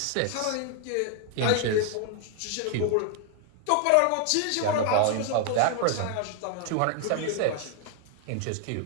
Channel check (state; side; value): different; both; correlation 0.00